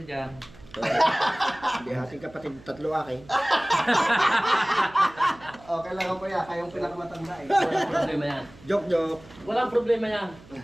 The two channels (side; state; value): right; noise; hum, 22 dB below the sound